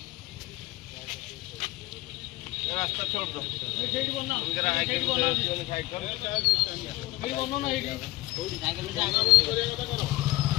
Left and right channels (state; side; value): quieter; right; 19.5 dB